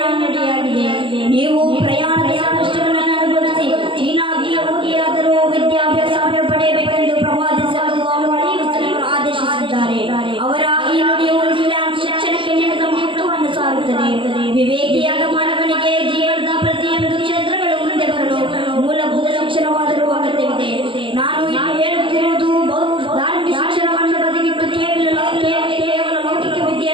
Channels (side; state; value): left; late; 0.25 ms